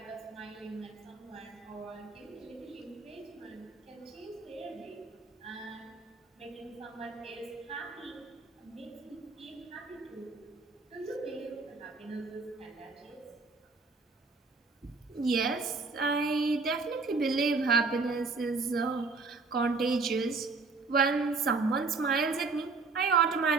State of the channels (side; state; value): left; quieter; 4.1 dB